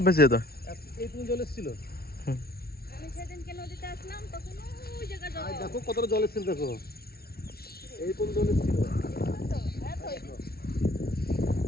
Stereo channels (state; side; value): late; right; 0.44 ms